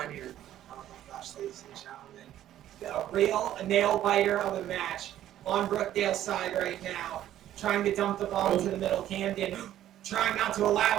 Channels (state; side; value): quieter; left; 12.3 dB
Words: here. Oh my gosh, ladies and gentlemen. A real nail biter of a match on Brookdale's side right now. Trying to dump the ball into the middle. Camden trying not to